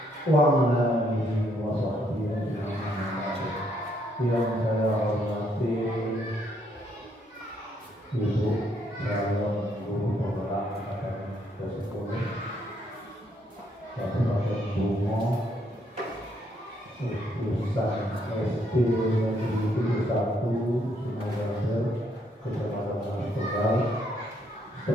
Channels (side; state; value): both; normal; correlation 0.72